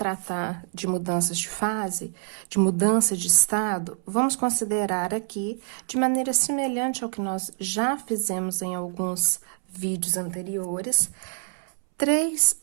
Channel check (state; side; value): silent; left; 61 dB below the other